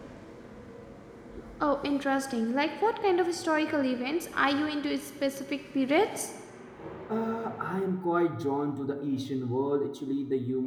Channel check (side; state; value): both; identical; correlation 1.00